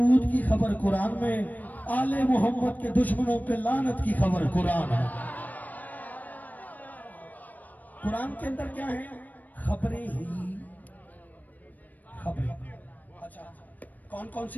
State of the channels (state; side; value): late; right; 0.081 ms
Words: की खबर कुरान में, आले मोहम्मद के दुश्मनों पे लानत की खबर कुरान है। कुरान के अंदर क्या है? खबरें ही खबरें। अच्छा, कौन कौन